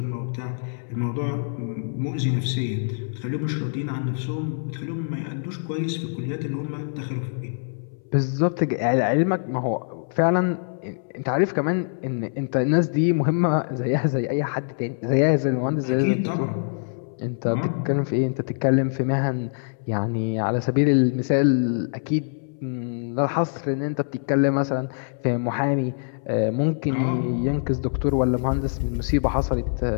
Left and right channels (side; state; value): right; silent; 62 dB below the other